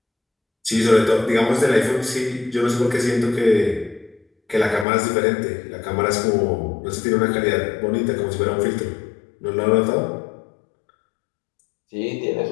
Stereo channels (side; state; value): right; drops out; at 4.9 s